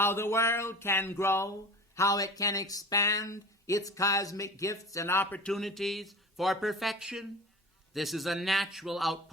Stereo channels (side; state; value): both; normal; correlation 0.36